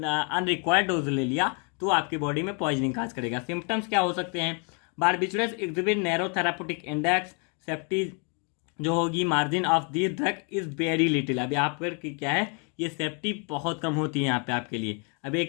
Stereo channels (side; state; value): right; quieter; 36.8 dB